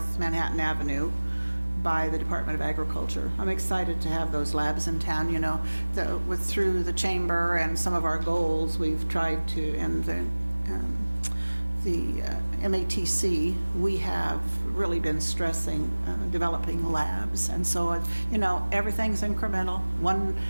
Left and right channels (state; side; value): inverted; both; correlation -1.00